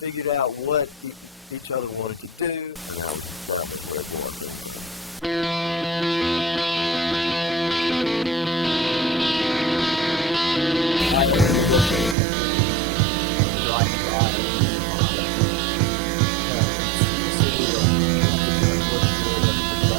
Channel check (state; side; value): drops out; left; at 12.2 s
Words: out what each other wanted to do, and that was where Gwar came from. I only knew Richmond from driving by it on 95. But it's a city that you have to kind of look through the